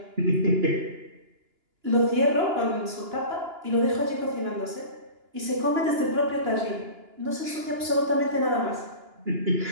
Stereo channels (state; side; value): late; left; 2.9 ms